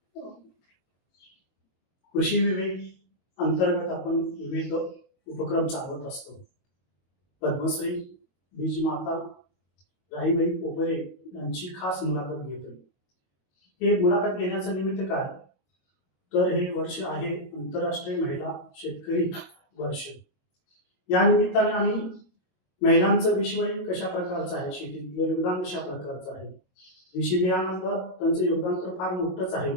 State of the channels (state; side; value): late; right; 22 ms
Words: कृषी विवेक अंतर्गत आपण विविध उपक्रम चालवत असतो. पद्मश्री बीजमाता राहीबाई पोपेरे यांची खास मुलाखत घेतोय. हे मुलाखत घेण्याचं निमित्त काय, तर हे वर्ष आहे आंतरराष्ट्रीय महिला शेतकरी वर्ष. या निमित्ताने आम्ही महिलांचं विश्व कशा प्रकारचं आहे, शेतीतलं योगदान कशा प्रकारचं आहे, देशी बियाणातलं त्यांचं योगदान तर फार मोठंच आहे